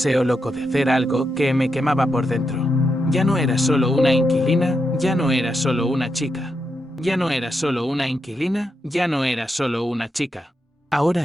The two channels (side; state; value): both; normal; correlation 0.84